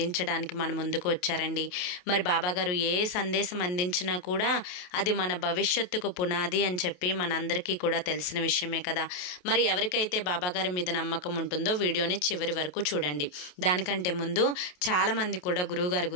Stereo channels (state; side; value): late; right; 28 ms